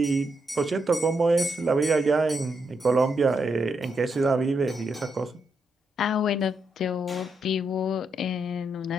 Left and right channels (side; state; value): both; normal; correlation 0.81